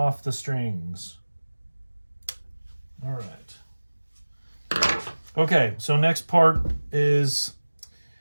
the strings. All right. Okay, so next part is,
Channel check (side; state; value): both; inverted; correlation -1.00